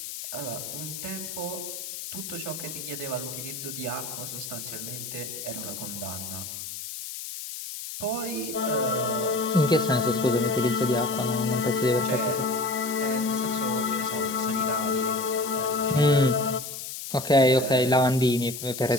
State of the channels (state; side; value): noise; left; hiss, 8 dB below the sound